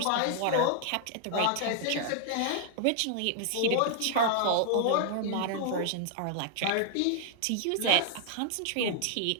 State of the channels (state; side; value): different; both; correlation -0.01